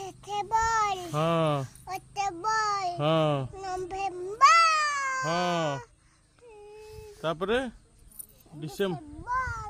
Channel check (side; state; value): both; identical; correlation 1.00